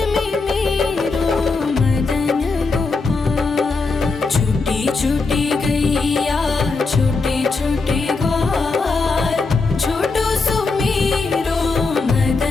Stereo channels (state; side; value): quieter; right; 4.0 dB